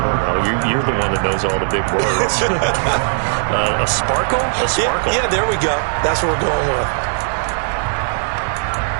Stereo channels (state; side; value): silent; left; digital silence